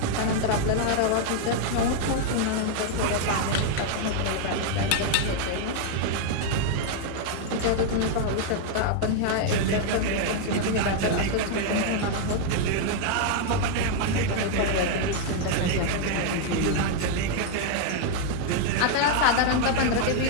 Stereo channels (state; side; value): different; both; correlation 0.00